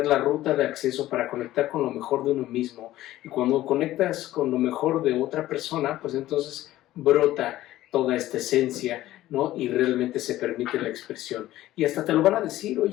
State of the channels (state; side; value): quieter; right; 15.0 dB